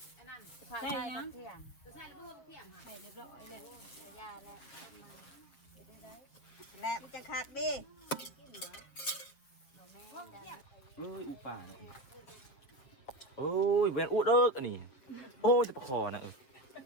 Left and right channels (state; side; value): late; right; 7.2 ms